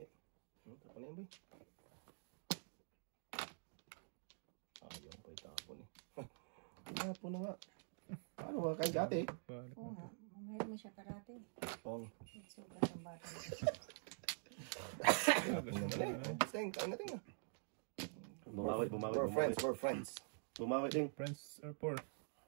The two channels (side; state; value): left; silent; digital silence